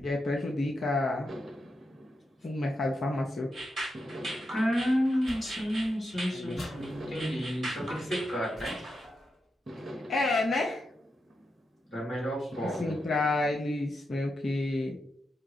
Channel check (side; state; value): both; normal; correlation 0.86